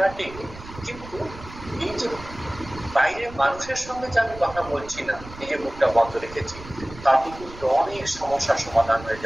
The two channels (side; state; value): right; noise; rumble, 15 dB below the sound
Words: ঠিক, কিন্তু এই যে বাইরে মানুষের সঙ্গে যে আমি কথা বলছি না, এই যে মুখটা বন্ধ রেখেছি, তাতে কিন্তু অনেক সমস্যার সমাধান হয়ে